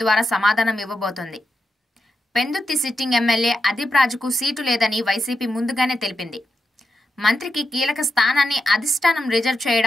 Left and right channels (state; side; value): normal; both; correlation 0.87